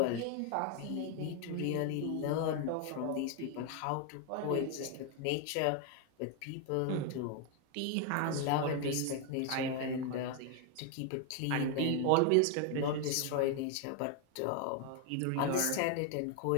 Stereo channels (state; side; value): different; both; correlation 0.01